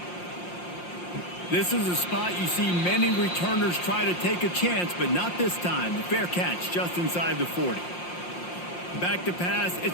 This is a spot you see many returners try to take a chance, but not this time. The fair catch just inside the 40. Back to pass,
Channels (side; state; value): right; late; 5.7 ms